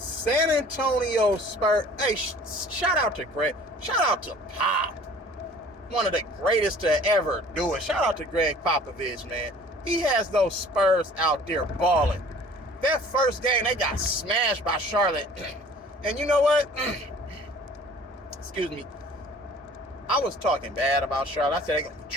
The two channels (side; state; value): both; normal; correlation 0.49